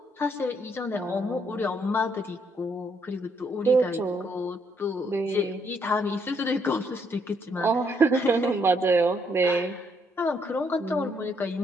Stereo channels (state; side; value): normal; both; correlation 0.72